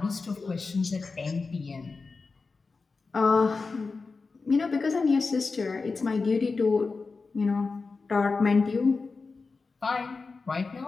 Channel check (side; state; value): right; quieter; 4.2 dB